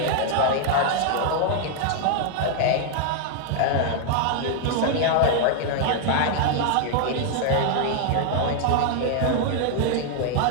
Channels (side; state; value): both; different; correlation 0.00